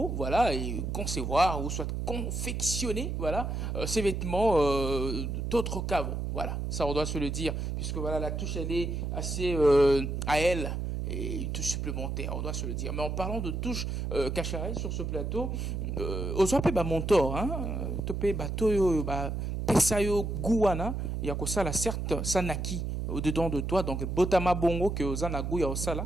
voilà, et concevoir, ou soit confectionner, voilà, ces vêtements d'autres qu'avant, voilà, ça on doit se le dire, puisque voilà, la touche elle est assez à elle, et une touche supplémentaire, on doit se le dire. Mais en parlant de touche cacharelle sur ce plateau, aux appels montor, hein, topé bateau, pesayo gouana, il y a que ça, la certes, ça naquit au-dedans de toi, donc botama bongo que aux anagou ya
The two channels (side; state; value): right; noise; hum, 2 dB below the sound